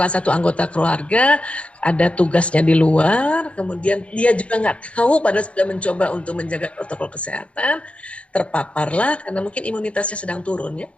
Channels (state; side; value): late; right; 0.062 ms